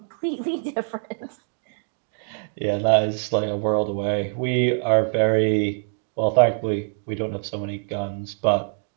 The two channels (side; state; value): left; silent; digital silence